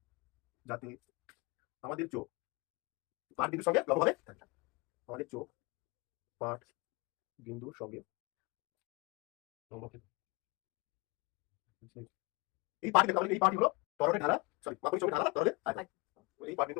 যাতে আমাদের চোখ পাঠ বিন্দুর সঙ্গে লম্বভাবে থাকে আমাদের চোখ পাঠ বিন্দুর সঙ্গে লম্ব এই পাঠ দেখতে এই পাঠই হলো তরলের ঢালা মাপনির সঙ্গে ঢালা তরলের আয়তন এই পাঠ বিন্দু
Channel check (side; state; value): right; quieter; 26.3 dB